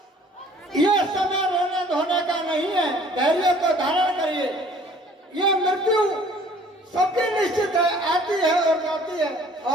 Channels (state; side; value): normal; both; correlation 0.54